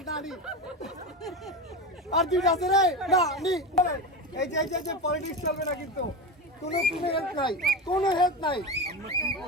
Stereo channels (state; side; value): normal; both; correlation 0.21